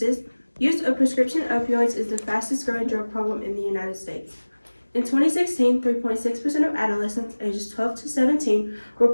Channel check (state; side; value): inverted; both; correlation -1.00